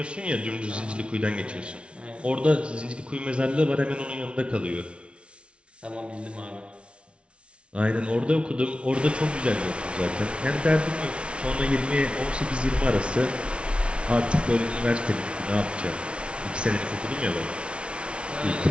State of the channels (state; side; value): late; left; 0.059 ms